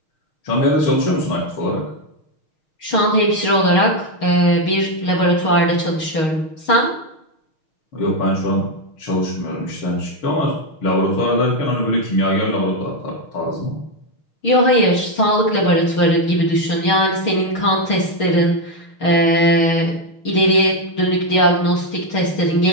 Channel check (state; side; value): late; right; 6.4 ms